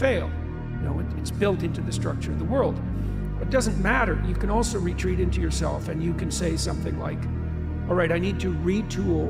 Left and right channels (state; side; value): identical; both; correlation 1.00